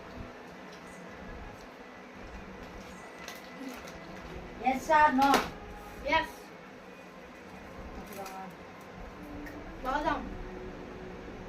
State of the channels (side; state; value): both; identical; correlation 1.00